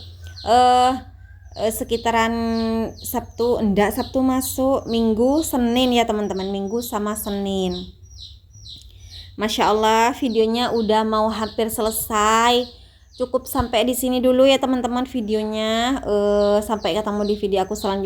sekitaran Sabtu masuk, Minggu Senin ya teman-teman, Minggu sama Senin. Masya Allah, videonya udah mau hampir selesai. Cukup sampai di sini dulu ya teman-teman videonya. Sampai ketemu di video aku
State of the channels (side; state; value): both; identical; correlation 1.00